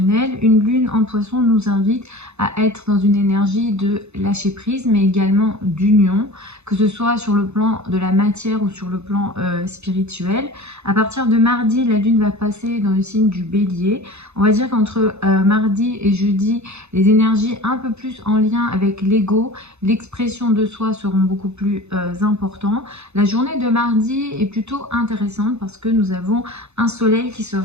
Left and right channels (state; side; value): late; left; 0.81 ms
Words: Une lune en poisson nous invite à être dans une énergie de lâcher prise, mais également d'union, que ce soit sur le plan de la matière ou sur le plan spirituel. À partir de mardi, la lune va passer dans le signe du bélier. On va dire qu'entre mardi et jeudi, les énergies un peu plus en lien avec l'ego, l'expression de soi seront beaucoup plus importantes. La journée de mardi est plutôt intéressante parce que nous avons un soleil qui